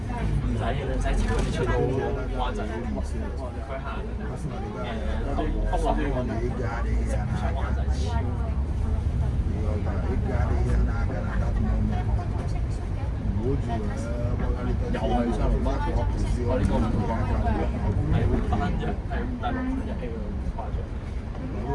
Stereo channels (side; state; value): both; identical; correlation 1.00